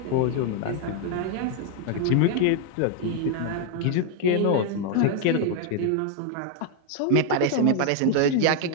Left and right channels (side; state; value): both; different; correlation 0.00